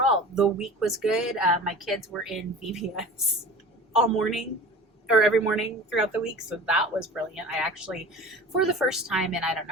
the week was good. My kids were in VBS all morning, or every morning throughout the week. So that was brilliant. I actually, for the first time in I don't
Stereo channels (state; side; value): normal; both; correlation 0.37